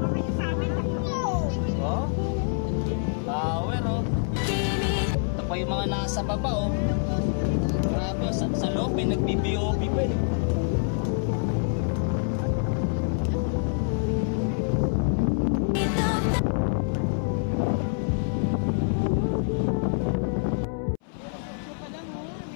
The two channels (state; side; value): silent; right; 61 dB below the other